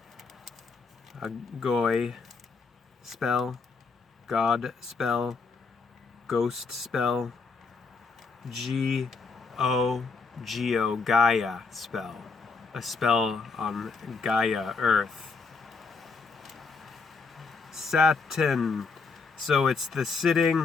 a goy spell, God spell, ghost spell, Geo, Gaia spell, a spell on Gaia, Earth. Saturn, so it's the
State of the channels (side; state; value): right; quieter; 4.6 dB